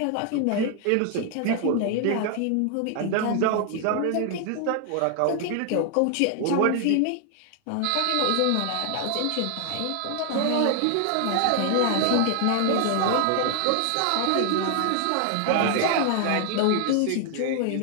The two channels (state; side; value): different; both; correlation 0.00